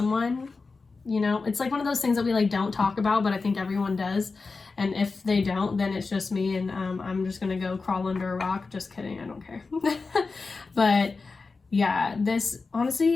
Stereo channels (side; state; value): right; quieter; 4.2 dB